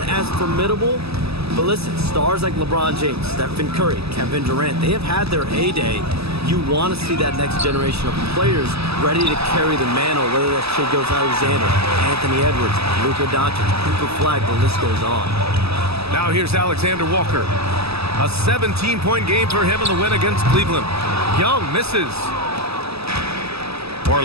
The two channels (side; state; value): left; late; 0.78 ms